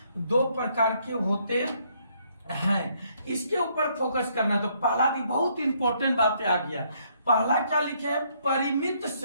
2 प्रकार के होते हैं। इसके ऊपर फोकस करना है। तो पहला भी बहुत इंपॉर्टेंट बातें आ गया। पहला क्या लिखे है, परिमित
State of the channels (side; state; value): both; inverted; correlation -0.70